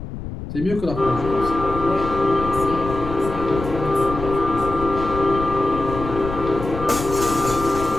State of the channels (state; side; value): noise; left; rumble, 8 dB below the sound